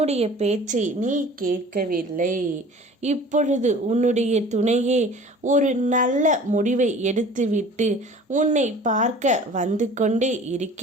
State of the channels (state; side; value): normal; both; correlation 0.45